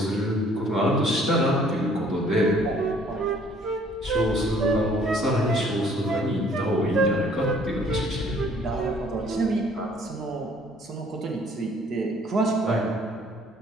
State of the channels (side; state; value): both; normal; correlation 0.59